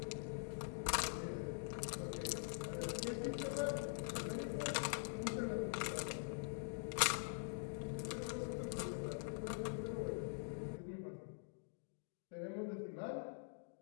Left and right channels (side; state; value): right; silent; digital silence